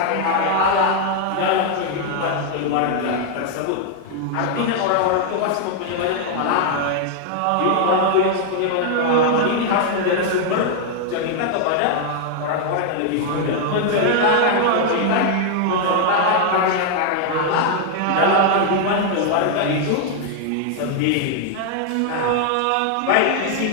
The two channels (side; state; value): both; different; correlation 0.00